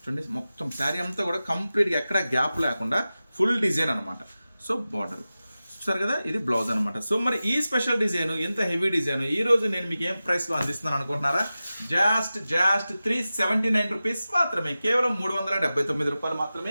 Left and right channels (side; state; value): both; inverted; correlation -0.95